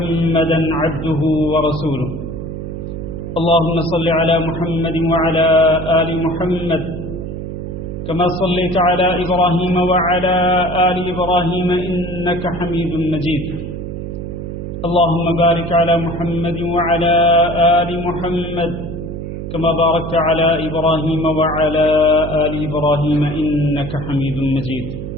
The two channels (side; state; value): right; noise; hum, 7 dB below the sound